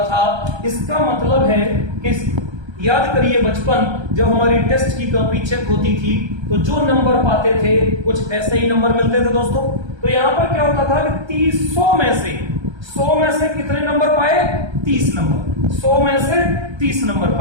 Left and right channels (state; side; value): late; left; 1.3 ms